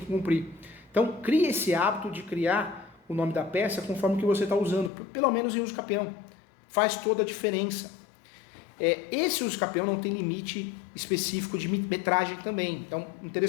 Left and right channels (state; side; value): drops out; right; at 4.9 s